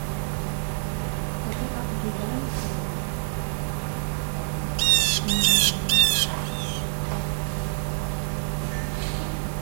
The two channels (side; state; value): left; silent; digital silence